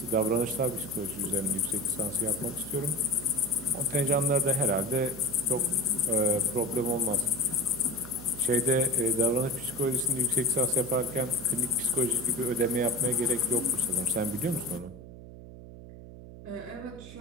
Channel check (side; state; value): right; noise; hum, 15 dB below the sound